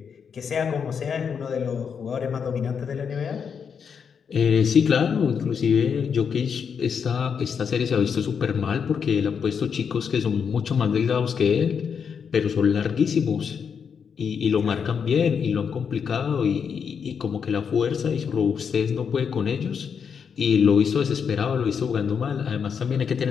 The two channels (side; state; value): right; quieter; 6.7 dB